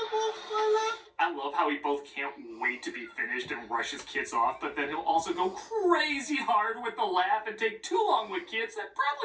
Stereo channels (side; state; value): both; identical; correlation 1.00